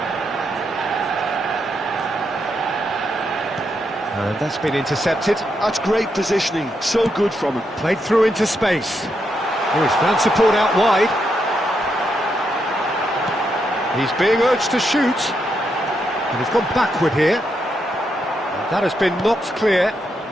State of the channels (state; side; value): normal; both; correlation 0.81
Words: And that's been intercepted. That's great positioning, so good from him. Played through into space. Oh, he's found support out wide. He's being urged to shoot. And he's gone backward here. And that has been knocked clear.